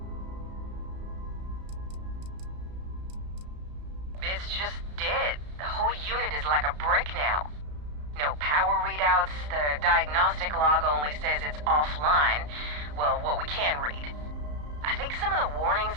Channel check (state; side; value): late; left; 34 ms